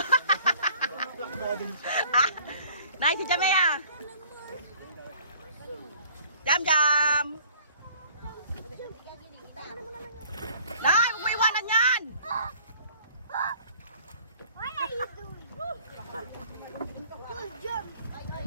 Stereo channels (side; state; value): both; inverted; correlation -0.53